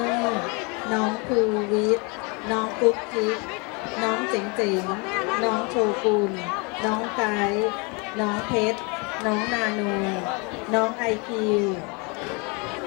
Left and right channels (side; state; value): right; quieter; 30.9 dB